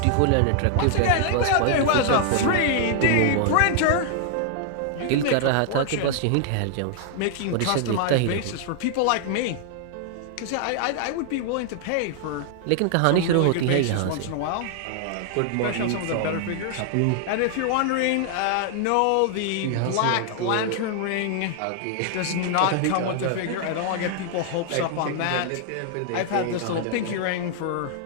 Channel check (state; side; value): different; both; correlation 0.00